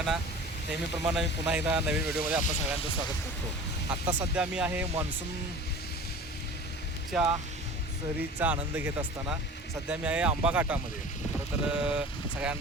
नेहमीप्रमाणे मी पुन्हा एकदा नवीन व्हिडिओमध्ये आपलं सगळ्यांचं स्वागत करतो. आत्ता सध्या मी आहे मान्सूनच्या सहलीचा आनंद घेत असताना सध्या मी आहे आंबा घाटामध्ये. खरं तर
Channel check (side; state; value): both; normal; correlation 0.40